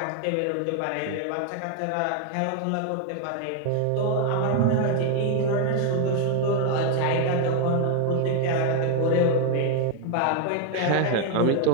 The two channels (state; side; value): different; both; correlation 0.00